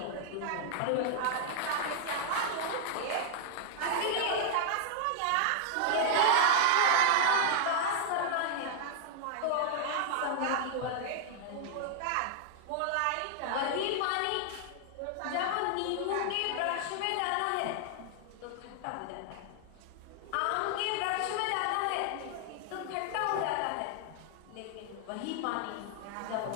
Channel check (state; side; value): different; both; correlation 0.00